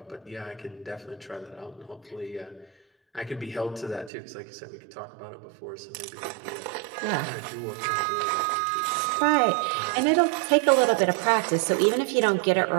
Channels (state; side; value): drops out; left; at 4.1 s